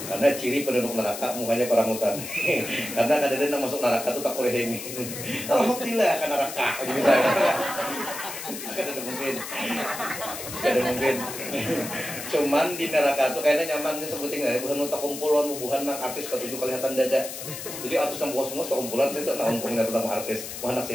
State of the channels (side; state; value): left; noise; hiss, 9 dB below the sound